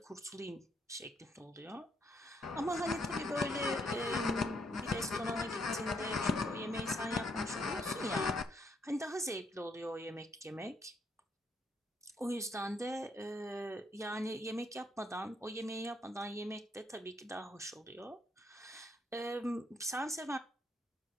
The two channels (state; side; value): normal; both; correlation 0.73